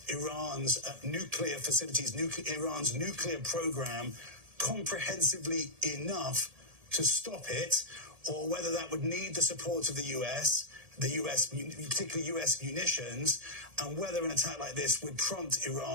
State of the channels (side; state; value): left; late; 1.8 ms